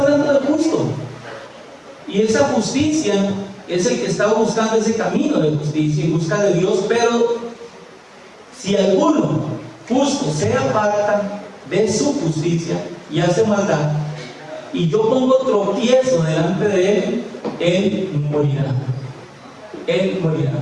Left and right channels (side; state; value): both; identical; correlation 1.00